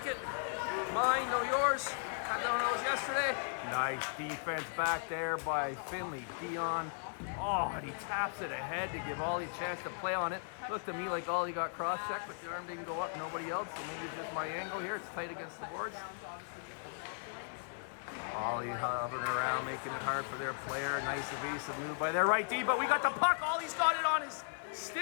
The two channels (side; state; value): right; silent; 53 dB below the other